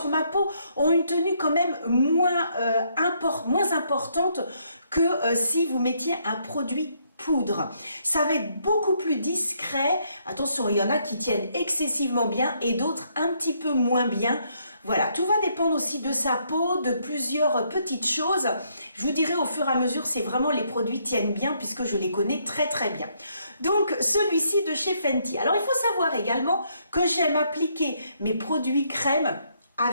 ma peau, ont une tenue quand même moins importante que si vous mettiez un produit poudre. Ça va être beaucoup plus discret. Attention, il y en a qui tiennent excessivement bien et d'autres un petit peu moins bien. Voilà, tout va dépendre aussi de sa peau, de plusieurs petites choses. Je vous dirai au fur et à mesure si vraiment les produits tiennent bien puisque je les connais très bien. Donc celui-ci de chez Fenty. Alors il faut savoir également que j'aime appliquer mes produits crème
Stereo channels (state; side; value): inverted; both; correlation -0.72